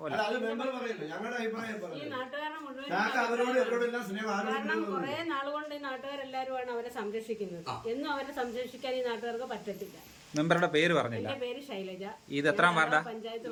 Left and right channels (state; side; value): identical; both; correlation 1.00